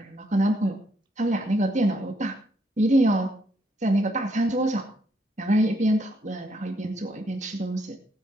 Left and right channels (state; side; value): normal; both; correlation 0.73